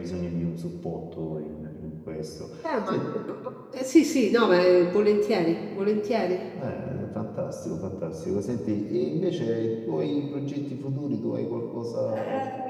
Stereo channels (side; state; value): both; identical; correlation 1.00